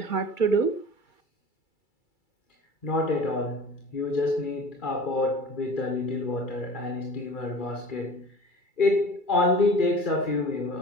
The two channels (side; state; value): right; late; 2.3 ms